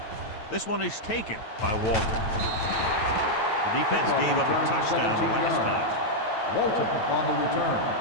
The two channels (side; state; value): right; late; 9.0 ms